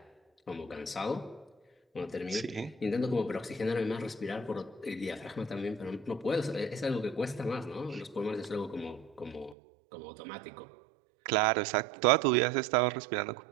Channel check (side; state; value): left; drops out; at 9.6 s